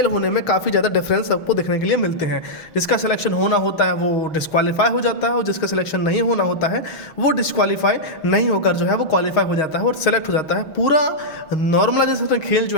होने में काफ़ी ज़्यादा डिफरेंस आपको देखने के लिए मिलते हैं। जिसका सिलेक्शन होना होता है वो डिस्क्वालीफाई हो जाता है और जिसका सिलेक्शन नहीं होना होता है वो डिस्क्वालीफाई नहीं होकर जो है वो क्वालिफाई हो जाता है और सेलेक्ट हो जाता है। पूरा नॉर्मलाइजेशन का खेल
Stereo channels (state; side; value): late; right; 6.4 ms